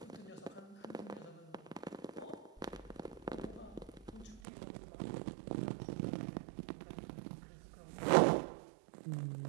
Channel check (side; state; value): left; drops out; at 4.4 s